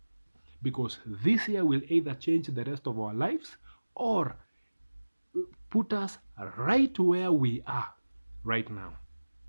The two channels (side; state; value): both; inverted; correlation -1.00